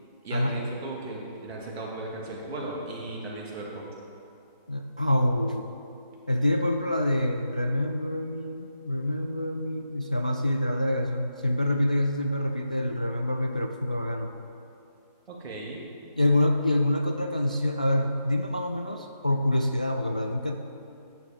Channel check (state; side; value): inverted; both; correlation -0.87